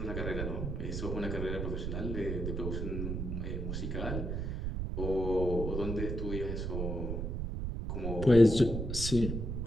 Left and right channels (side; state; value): right; noise; rumble, 2 dB below the sound